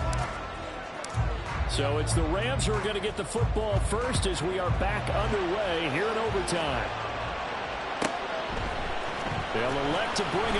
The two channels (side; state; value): both; identical; correlation 1.00